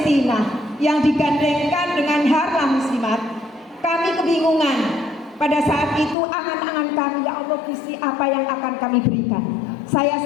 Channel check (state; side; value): drops out; right; at 6.2 s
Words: yang digandengkan dengan Harlam Muslimat. Kami kebingungan. Pada saat itu angan-angan kami, ya Allah Gusti, apa yang akan kami berikan.